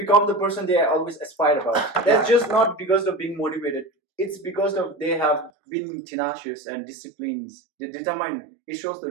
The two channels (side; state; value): left; drops out; at 5.5 s